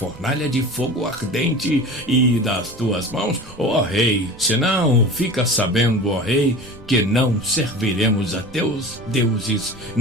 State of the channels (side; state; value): right; noise; rumble, 20 dB below the sound